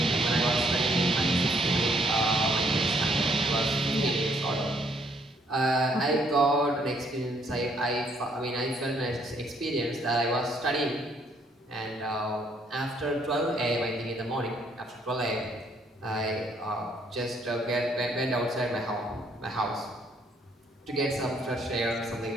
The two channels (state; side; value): normal; both; correlation 0.68